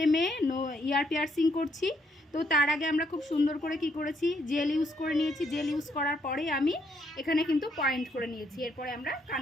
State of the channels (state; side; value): normal; both; correlation 0.72